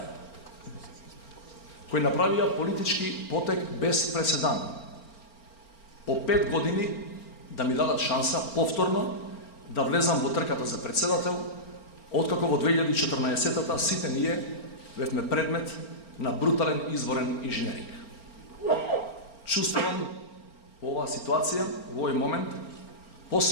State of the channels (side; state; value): right; late; 4.4 ms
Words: кои направија политички потек без преседан. По 5 години да ми дадат шанса повторно да влезам во трката за председател, откако во 2014-та сите ние бевме предмет на брутален изборен инженеринг. Чувствувам во оваа ситуација, во овој момент,